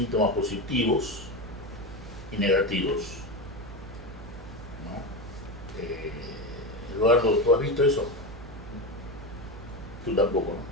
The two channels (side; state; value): right; noise; hum, 15 dB below the sound